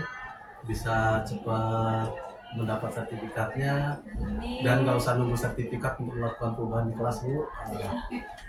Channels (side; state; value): both; identical; correlation 1.00